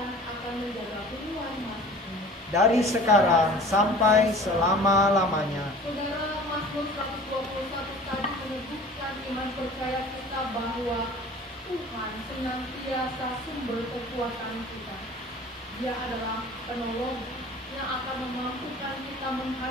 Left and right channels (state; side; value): normal; both; correlation 0.45